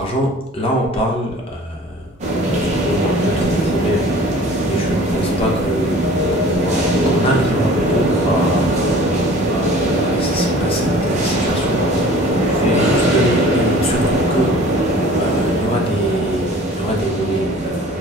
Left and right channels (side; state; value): both; normal; correlation 0.46